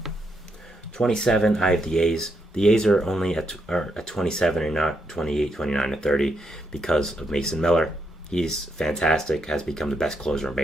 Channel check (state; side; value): normal; both; correlation 0.80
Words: 27, I have the A's. The A's are only at 27 and not 28, 29, or 30 because of Mason Miller. He's fantastic, has become the best closer in